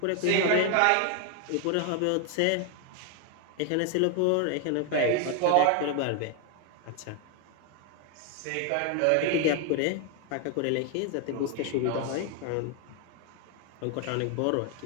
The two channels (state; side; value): different; both; correlation 0.00